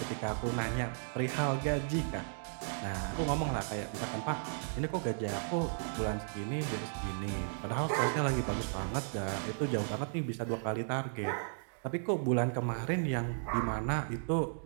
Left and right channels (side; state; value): left; silent; digital silence